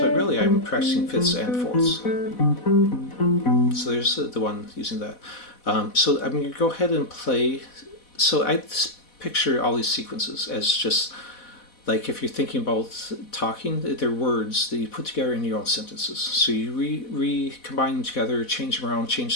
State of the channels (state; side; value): late; right; 4.1 ms